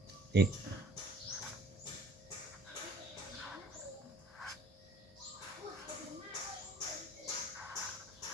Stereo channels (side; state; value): both; normal; correlation 0.54